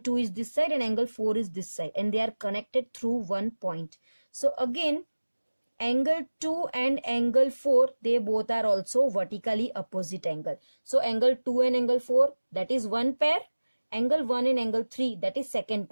is this side and angle 4 is this side. And they are connected through one point. So again, angle 2 and angle 4, they both are also vertically opposite angle. So angle 2 and angle 4, that is one pair. Angle 1 and angle 3, that is second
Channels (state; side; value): inverted; both; correlation -1.00